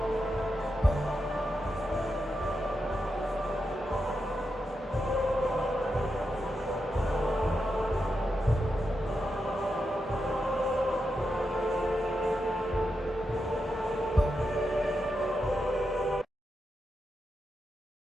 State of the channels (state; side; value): normal; both; correlation 0.86